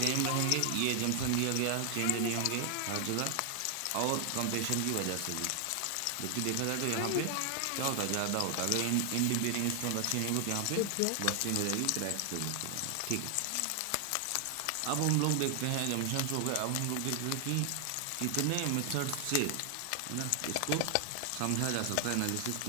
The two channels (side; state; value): both; different; correlation 0.00